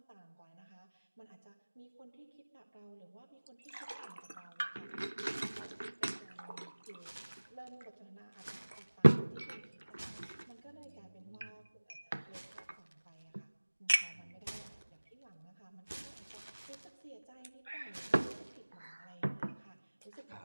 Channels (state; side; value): inverted; both; correlation -1.00